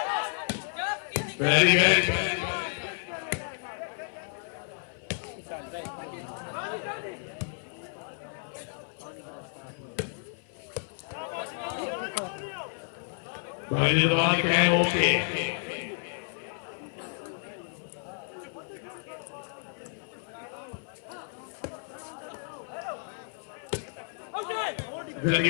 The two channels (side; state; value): right; silent; 57 dB below the other